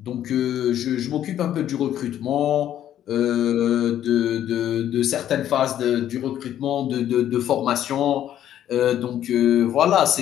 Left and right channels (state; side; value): quieter; right; 11.2 dB